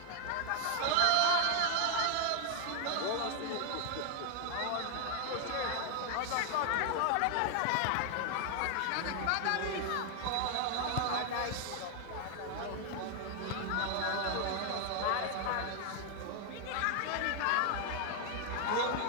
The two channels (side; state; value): both; different; correlation 0.01